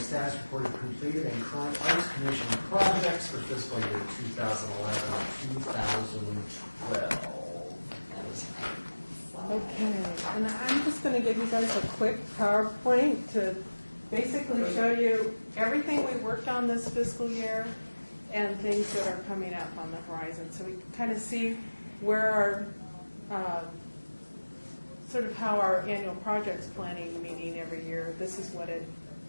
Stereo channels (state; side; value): inverted; both; correlation -1.00